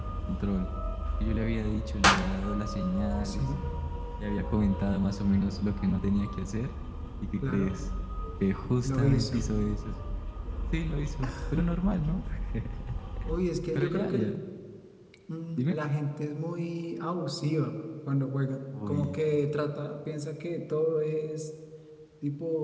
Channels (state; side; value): identical; both; correlation 1.00